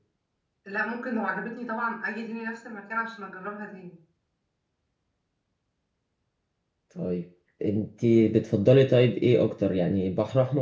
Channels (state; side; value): identical; both; correlation 1.00